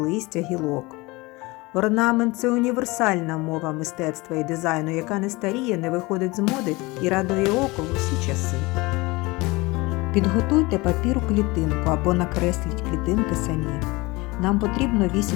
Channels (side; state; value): right; quieter; 23.2 dB